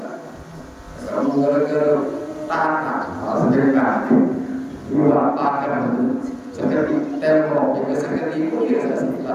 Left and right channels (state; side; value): identical; both; correlation 1.00